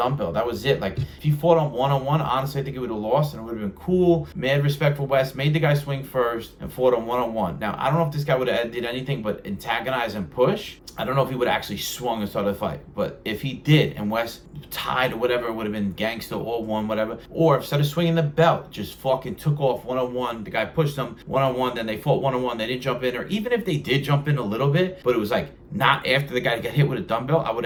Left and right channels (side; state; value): both; identical; correlation 1.00